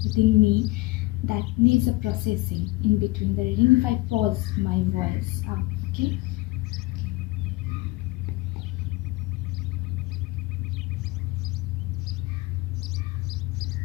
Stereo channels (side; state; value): right; quieter; 21.2 dB